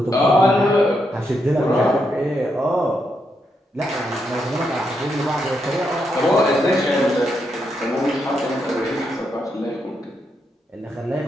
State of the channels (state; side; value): normal; both; correlation 0.81